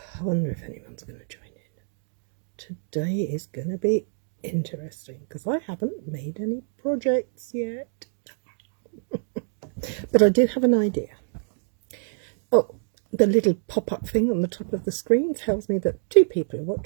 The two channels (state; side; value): silent; left; digital silence